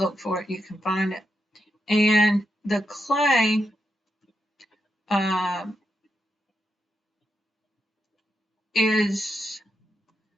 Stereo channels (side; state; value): both; normal; correlation 0.84